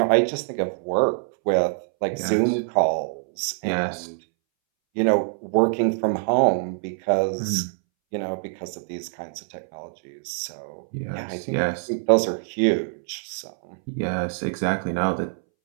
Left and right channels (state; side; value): silent; left; 62 dB below the other